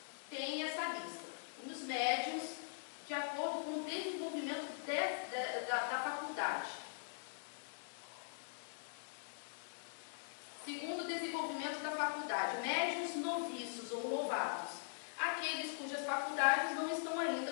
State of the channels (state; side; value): silent; right; digital silence